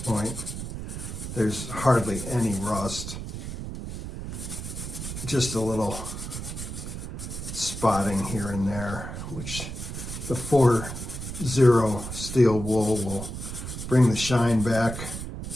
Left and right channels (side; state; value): right; noise; rumble, 7 dB below the sound